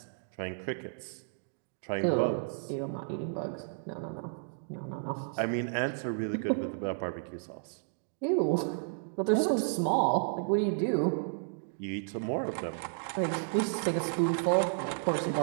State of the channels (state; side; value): silent; left; digital silence